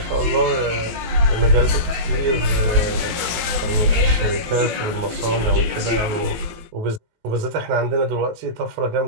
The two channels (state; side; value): late; left; 18 ms